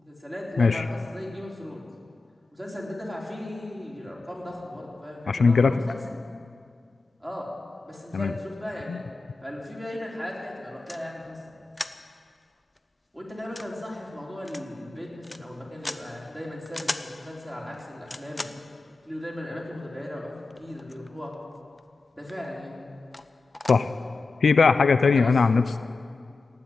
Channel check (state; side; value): quieter; right; 3.8 dB